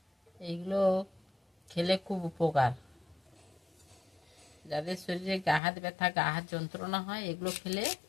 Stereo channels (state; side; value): drops out; right; at 5.6 s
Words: এইগুলো খেলে খুব উপকার। যাদের শরীরে গা হাত ব্যথা, গা হাত যন্ত্রণা হয়, এগুলো খেলে